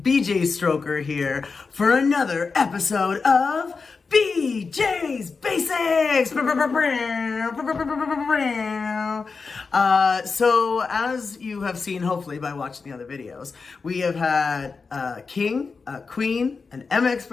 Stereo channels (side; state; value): right; quieter; 4.7 dB